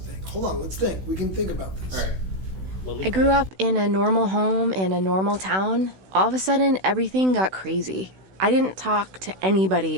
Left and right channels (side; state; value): left; late; 16 ms